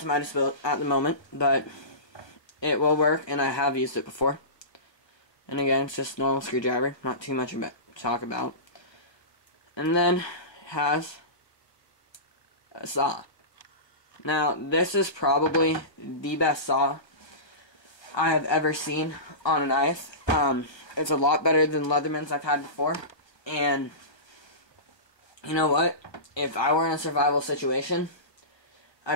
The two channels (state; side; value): late; right; 1.3 ms